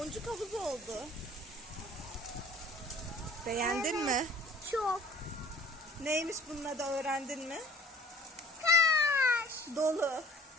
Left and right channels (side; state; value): both; normal; correlation 0.49